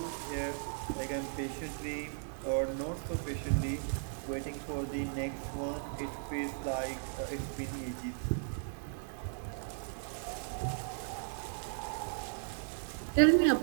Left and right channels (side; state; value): left; silent; digital silence